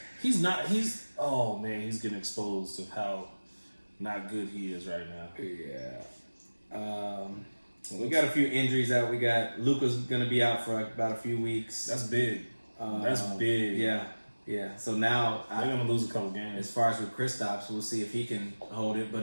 he's getting exposed of how not good he is right now. Yeah. We got a few injuries out. We got Luka's going to be out for about a few weeks. That's big. That's big. Yeah. So now they're going to lose a couple games. As far as with Kristaps, we'll see if he can hold it.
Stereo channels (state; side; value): inverted; both; correlation -1.00